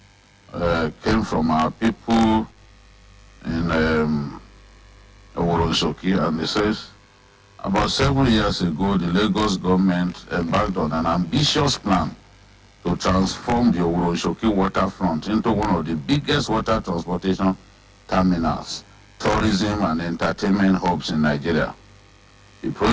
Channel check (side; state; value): both; identical; correlation 1.00